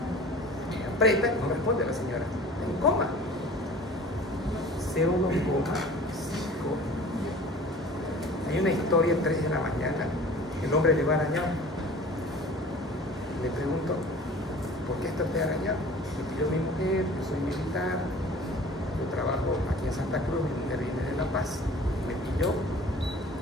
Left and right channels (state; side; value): normal; both; correlation 0.44